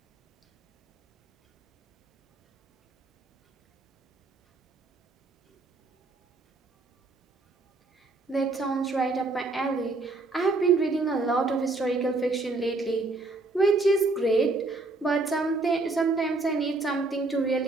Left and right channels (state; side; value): quieter; left; 3.3 dB